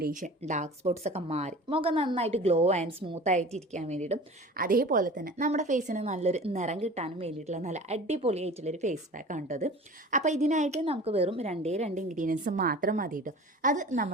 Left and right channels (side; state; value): both; normal; correlation 0.40